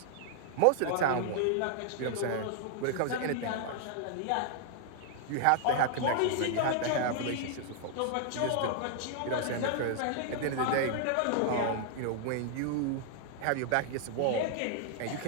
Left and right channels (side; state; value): both; different; correlation 0.00